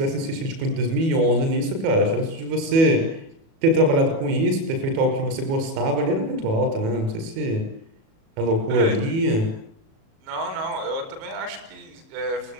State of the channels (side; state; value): left; late; 37 ms